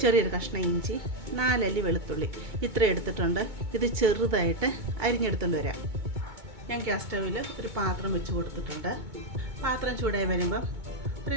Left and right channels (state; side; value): late; left; 2.2 ms